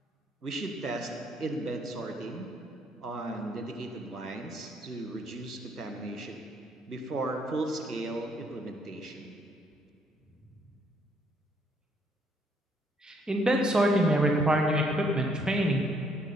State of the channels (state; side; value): normal; both; correlation 0.68